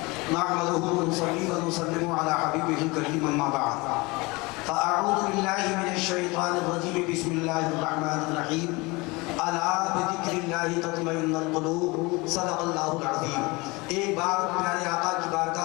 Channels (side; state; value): right; quieter; 24.7 dB